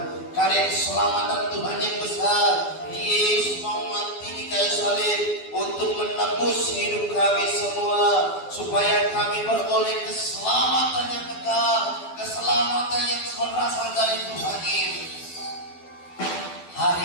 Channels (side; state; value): right; late; 12 ms